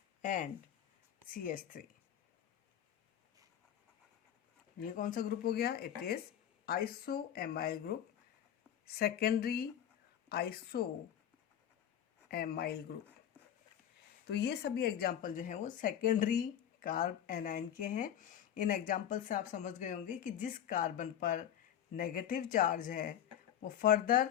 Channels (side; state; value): right; quieter; 10.1 dB